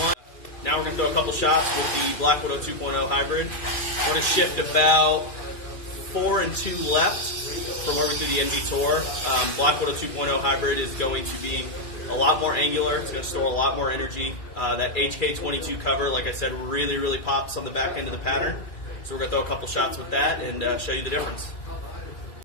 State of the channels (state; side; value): late; right; 2.5 ms